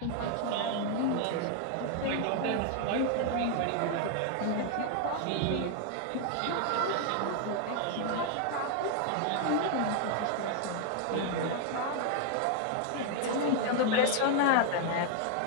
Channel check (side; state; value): both; different; correlation 0.00